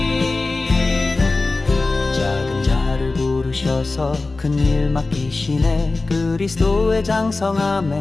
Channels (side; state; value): right; quieter; 3.4 dB